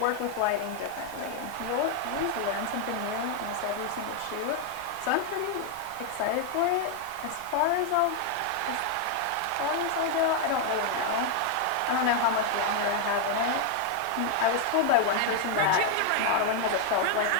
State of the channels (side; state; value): both; different; correlation 0.00